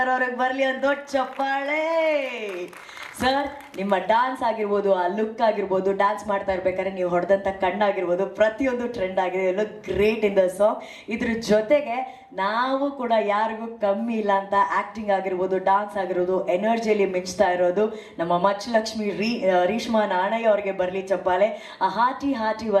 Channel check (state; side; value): identical; both; correlation 1.00